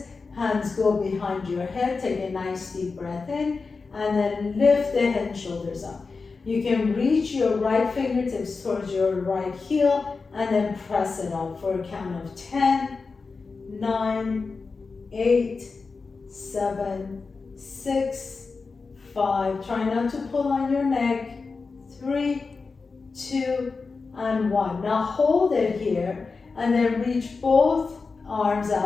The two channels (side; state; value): right; quieter; 4.4 dB